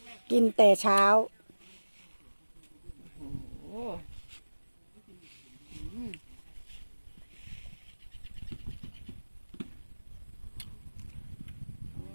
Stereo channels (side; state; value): both; inverted; correlation -1.00